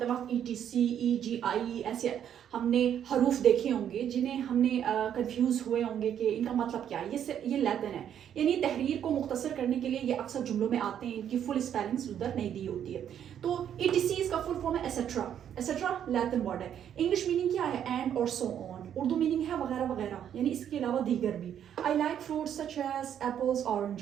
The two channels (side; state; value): left; quieter; 9.5 dB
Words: वक्त ETC, EGI ऐसे हमने हरूफ देखे होंगे जिन्हें हमने कंफ्यूज हुए होंगे कि इनका मतलब क्या है। ये लैटिन है, यानी तहरीर को मुख्तसर करने के लिए ये अक्सर जुमलों में आते हैं, इनकी फुल स्पेलिंग्स उधर नहीं दी होती है। तो ETC इसका फुल फॉर्म है एसेट्रा। एसेट्रा लैटिन वर्ड है। इंग्लिश मीनिंग क्या है? एंड और सो ऑन। उर्दू मीनिंग है वगैरह वगैरह, यानी इसके अलावा दीगर भी। I like fruits such as apples,